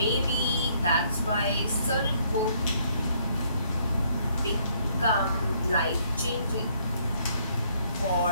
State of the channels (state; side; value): inverted; both; correlation -0.67